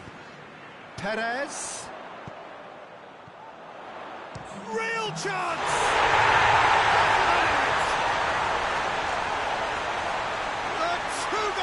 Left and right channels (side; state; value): both; identical; correlation 1.00